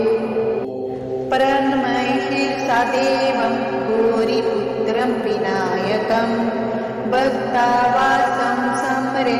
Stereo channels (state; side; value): identical; both; correlation 1.00